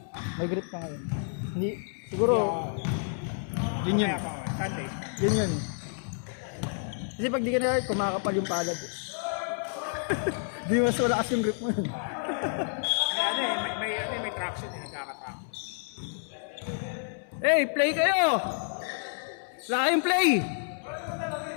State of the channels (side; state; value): right; silent; 58 dB below the other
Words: May grip pa ngayon. Hindi, siguro, yun yun. Yun yun. Kasi pag di ka na kumakapal yung palad. Di mas wala kasi yung grip mo yun. May traction eh, nagkaka-traction. Hey, play kayo! Wala kayong play!